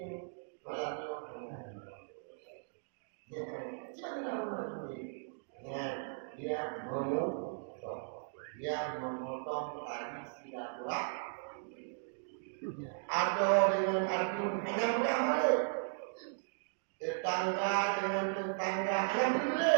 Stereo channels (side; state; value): left; silent; digital silence